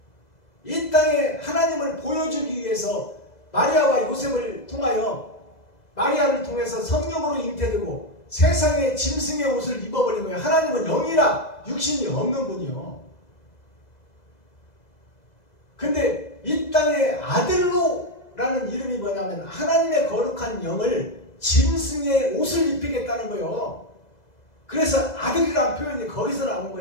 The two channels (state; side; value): late; right; 2.0 ms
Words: 이 땅에 하나님을 보여주기 위해서 마리아와 요셉을 통하여, 마리아를 통해서 성령으로 잉태되고 세상의 짐승의 옷을 입어버린 거예요. 하나님은 영이라 육신이 없는 분이요. 근데 이 땅에 아들로라는 이름이 뭐냐면 하나님의 거룩한 영을 짐승의 옷을 입히겠다는 거예요. 그래서 아들이란 표현이 거기서 나온